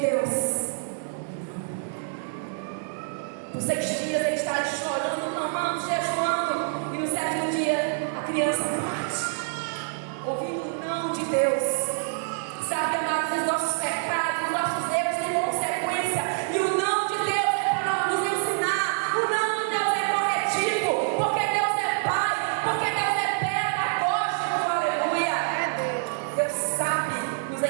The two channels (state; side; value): silent; left; 58 dB below the other